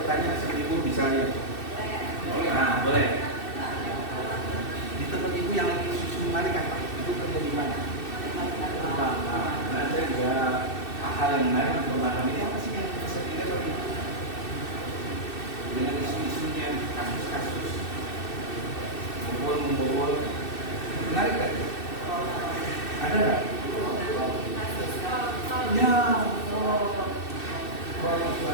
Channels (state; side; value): late; right; 2.6 ms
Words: seperti Ibu misalnya? Nah boleh. Di tempat Ibu yang lagi isu menarik apa? Ibu kerja di mana? Nah saya juga hal yang menarik untuk memahami ini apa sih yang bisa dilihat Bapak Ibu? Dengan isu-isunya, kasus-kasus membobol menarik kan? Ada nggak? Ya, kalau itu